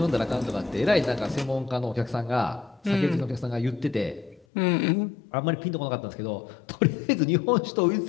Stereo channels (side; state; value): right; drops out; at 4.5 s